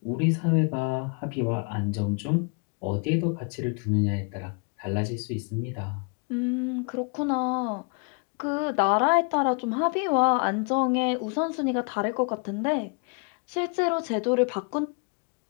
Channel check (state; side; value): quieter; right; 35.1 dB